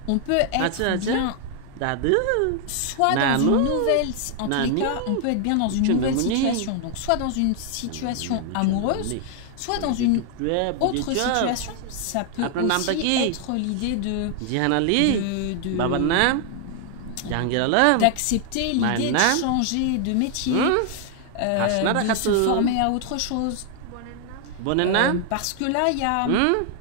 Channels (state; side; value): different; both; correlation 0.00